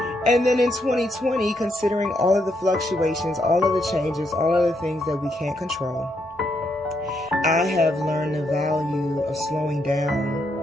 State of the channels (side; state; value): both; normal; correlation 0.77